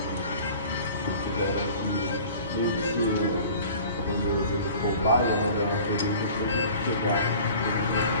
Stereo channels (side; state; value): both; inverted; correlation -0.45